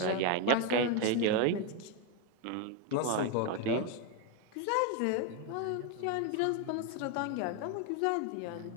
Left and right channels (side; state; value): both; different; correlation 0.01